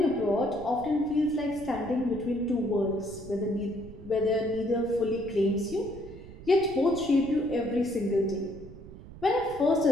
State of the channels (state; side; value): noise; right; rumble, 16 dB below the sound